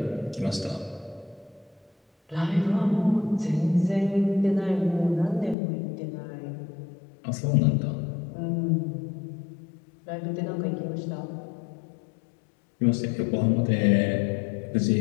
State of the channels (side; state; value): right; drops out; at 5.6 s